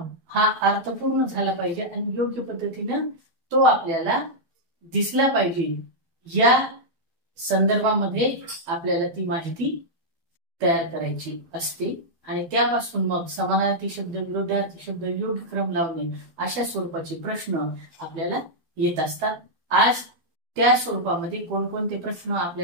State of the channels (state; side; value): late; left; 12 ms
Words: हा अर्थपूर्ण झाला पाहिजे आणि योग्य पद्धतीने तो आपल्याला दिसला पाहिजे। या संदर्भामध्ये आपल्याला ती माहिती तयार करायची असते आणि त्यापासून मग समानार्थी शब्द, विरुद्धार्थी शब्द, योग्य क्रम लावणे अशा स्वरूपाचे प्रश्न आपल्याला येत असतात। आज त्या स्वरूपामध्ये कोणकोणते प्रश्न